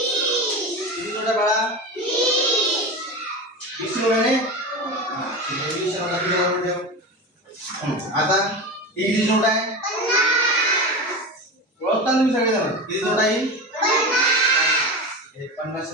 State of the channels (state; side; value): normal; both; correlation 0.25